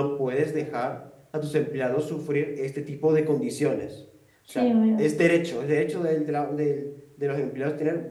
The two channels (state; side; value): identical; both; correlation 1.00